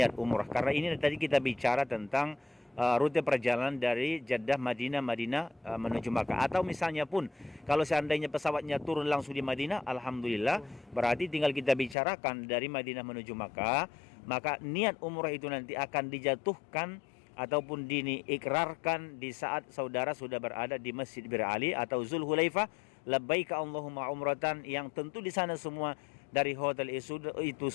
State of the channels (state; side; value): drops out; right; at 12.0 s